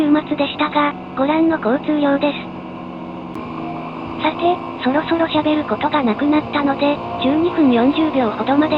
末でしたが、ご覧の交通量です。さて、そろそろ喋ることがなくなったので、12分40秒ほどま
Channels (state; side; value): identical; both; correlation 1.00